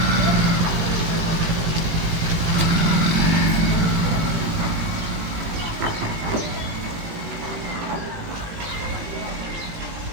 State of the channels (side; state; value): left; late; 18 ms